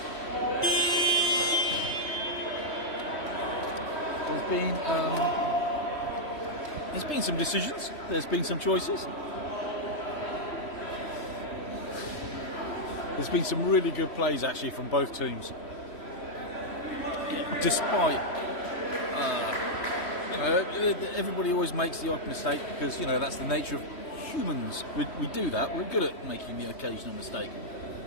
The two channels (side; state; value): right; late; 3.1 ms